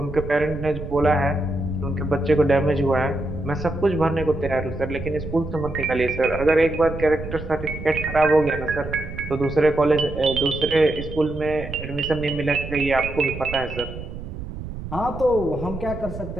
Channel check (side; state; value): right; noise; rumble, 9 dB below the sound